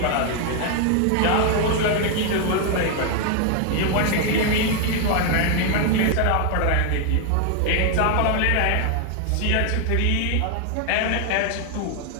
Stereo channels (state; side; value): different; both; correlation 0.00